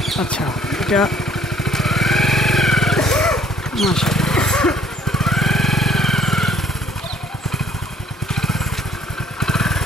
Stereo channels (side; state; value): both; normal; correlation 0.59